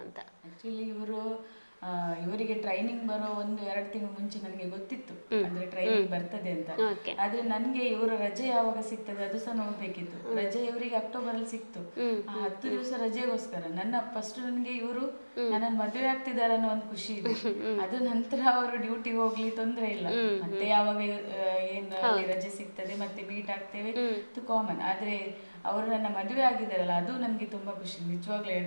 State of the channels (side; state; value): both; inverted; correlation -1.00